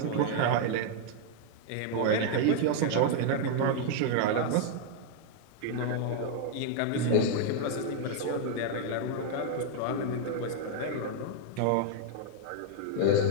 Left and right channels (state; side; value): different; both; correlation -0.01